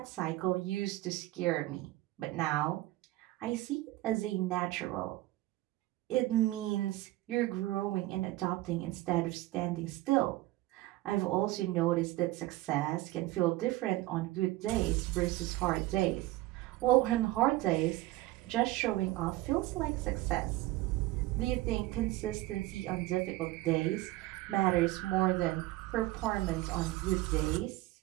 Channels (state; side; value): quieter; left; 17.8 dB